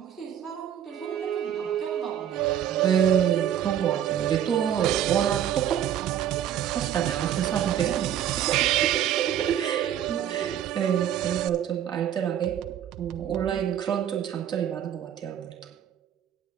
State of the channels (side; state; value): left; quieter; 10.1 dB